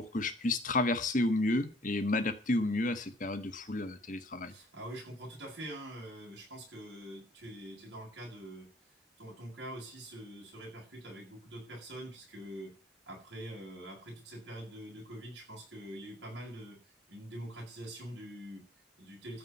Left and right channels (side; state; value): both; normal; correlation 0.57